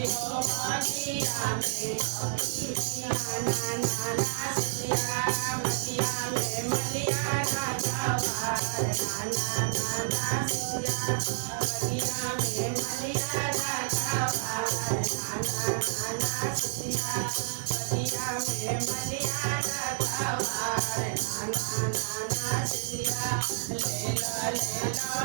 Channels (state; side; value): silent; left; 58 dB below the other